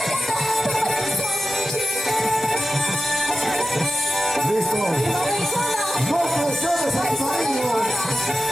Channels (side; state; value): both; normal; correlation 0.93